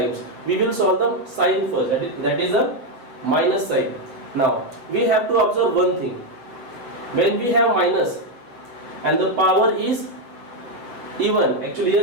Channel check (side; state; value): left; late; 8.2 ms